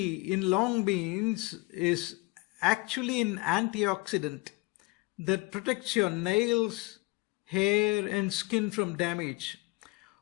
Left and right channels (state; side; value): quieter; right; 24.6 dB